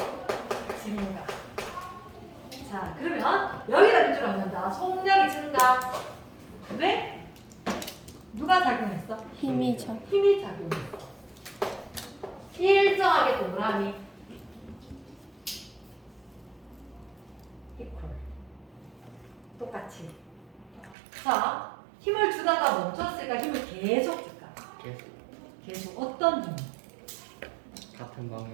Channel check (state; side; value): drops out; left; at 21.0 s